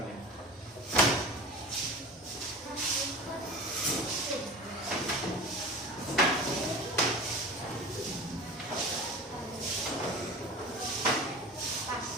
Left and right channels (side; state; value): both; normal; correlation 0.34